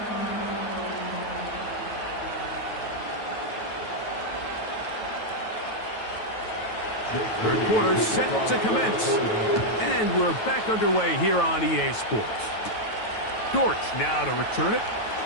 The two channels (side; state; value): right; late; 9.2 ms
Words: Third quarter set to commence. And we're back underway here on EA Sports. Dortch now to return it.